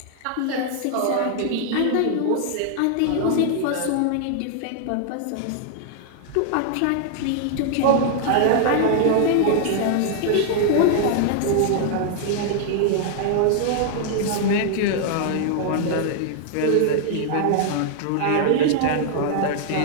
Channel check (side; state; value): both; different; correlation -0.01